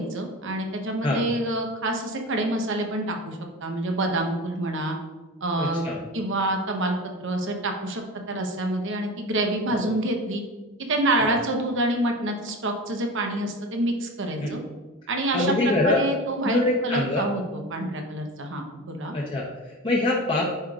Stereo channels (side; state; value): both; normal; correlation 0.30